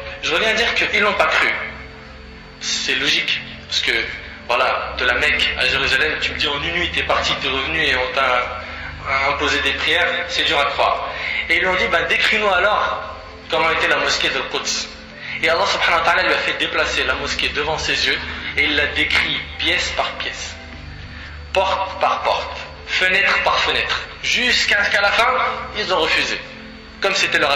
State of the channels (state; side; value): identical; both; correlation 1.00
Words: je reviens à dire qu'ils n'ont pas cru. C'est logique. Parce que voilà, de la Mecque à Jérusalem, tu me dis en une nuit t'es parti, t'es revenu et on t'a imposé des prières, c'est dur à croire. Et ils lui ont dit, décris-nous alors comment était la mosquée de Quds. Et Allah subhanahu wa ta'ala lui a fait déplacer la mosquée devant ses yeux et il l'a décrit pièce par pièce, porte par porte, fenêtre par fenêtre, jusqu'à ce qu'à la fin, ils ont refusé, comme c'était leur